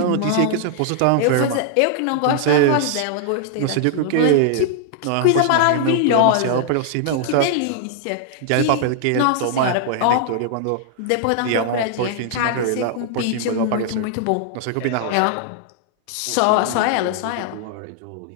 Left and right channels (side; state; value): both; different; correlation 0.00